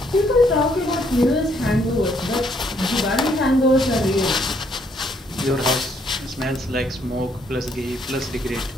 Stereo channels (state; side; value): normal; both; correlation 0.69